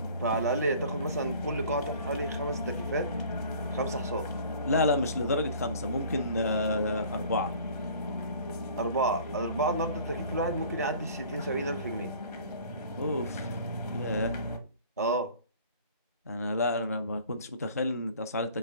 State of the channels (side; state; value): both; inverted; correlation -0.50